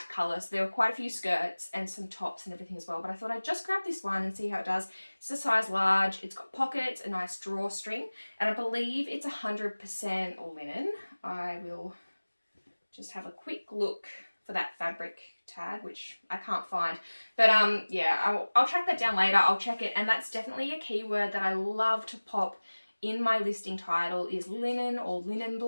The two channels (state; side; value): inverted; both; correlation -1.00